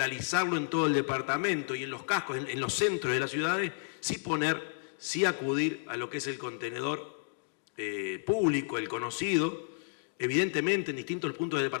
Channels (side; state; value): right; silent; digital silence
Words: en todo el departamento y en los cascos, en los centros de las ciudades, sí acudir a lo que es el contenedor público, el conocido. Evidentemente en distintos puntos del